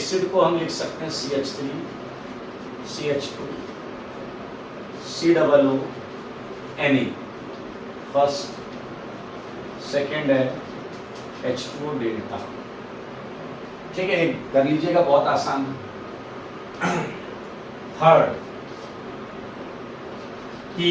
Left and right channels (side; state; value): both; identical; correlation 1.00